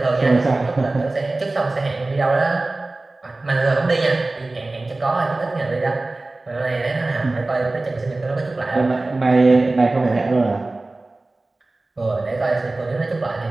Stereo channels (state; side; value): quieter; left; 3.0 dB